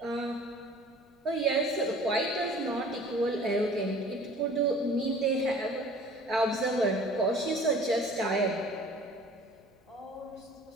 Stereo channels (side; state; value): both; normal; correlation 0.48